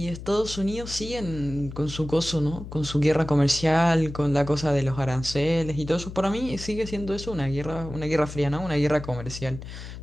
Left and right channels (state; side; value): noise; left; hum, 11 dB below the sound